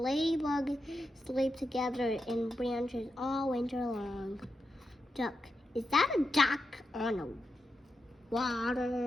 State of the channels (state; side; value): normal; both; correlation 0.87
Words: sleep together in branches all winter long. Duck. Is that a duck on the